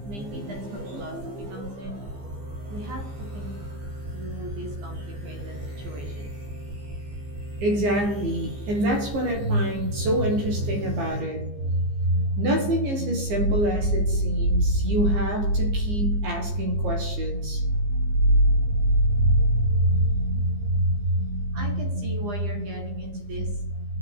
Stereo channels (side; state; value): left; late; 15 ms